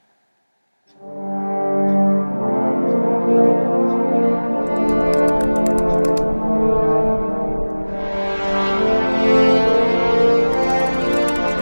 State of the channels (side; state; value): both; inverted; correlation -1.00